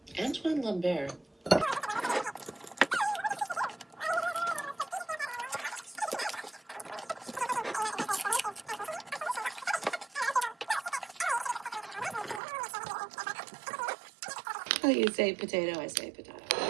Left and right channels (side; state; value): left; drops out; at 12.4 s